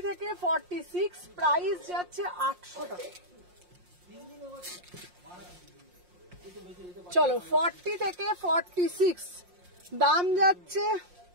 থেকে 46, প্রাইস যাচ্ছে 800 টাকা। চলো 40 থেকে 46 দাম যাচ্ছে।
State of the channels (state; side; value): late; left; 5.6 ms